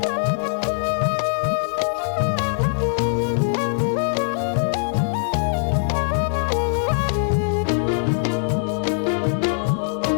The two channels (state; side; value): silent; right; digital silence